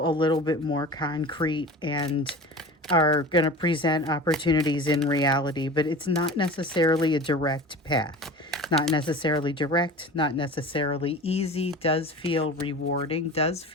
a little bit more concrete and are going to present opportunities in reality, but it's not necessarily a direct path. Not necessarily direct, not necessarily easy, does feel rewarding, does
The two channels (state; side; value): normal; both; correlation 0.36